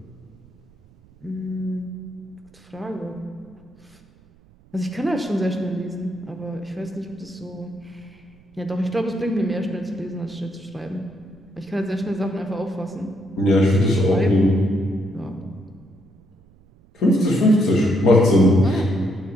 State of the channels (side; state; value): right; noise; rumble, 28 dB below the sound